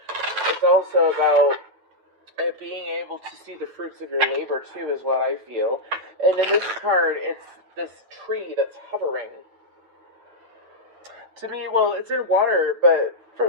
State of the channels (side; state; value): left; late; 9.1 ms